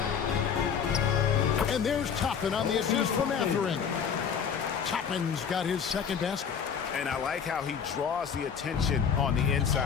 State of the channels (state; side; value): quieter; right; 7.1 dB